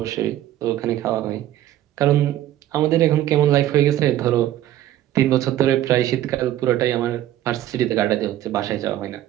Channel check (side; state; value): left; quieter; 13.0 dB